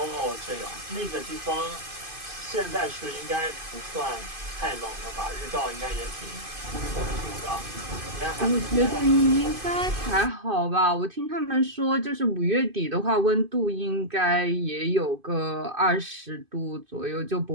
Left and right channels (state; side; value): late; left; 2.5 ms